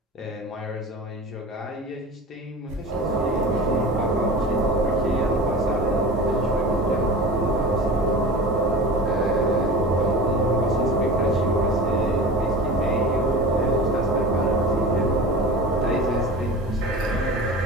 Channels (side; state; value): both; normal; correlation 0.34